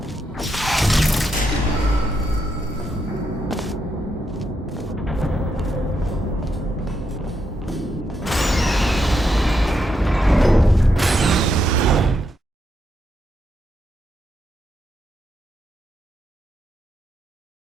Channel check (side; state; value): both; normal; correlation 0.81